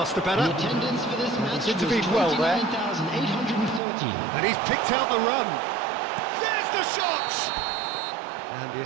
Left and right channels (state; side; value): drops out; left; at 3.8 s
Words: the better. The attendance for this match He's intervened well there. 29,813. And he's picked out the run. There's the shot! And the